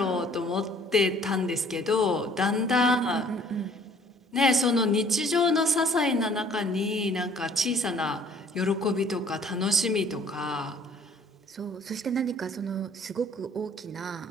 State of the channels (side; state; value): both; normal; correlation 0.57